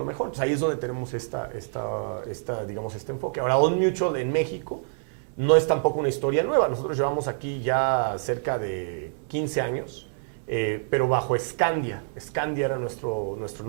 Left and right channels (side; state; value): left; silent; digital silence